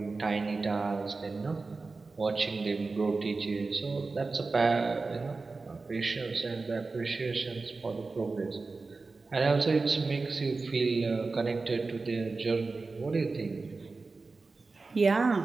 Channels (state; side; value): quieter; left; 3.9 dB